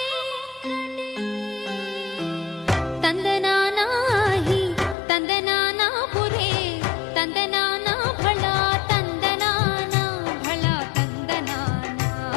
తందనానాహి తందనానా పురే తందనానా భళా తందనానా భళా తందనానా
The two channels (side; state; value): right; drops out; at 5.0 s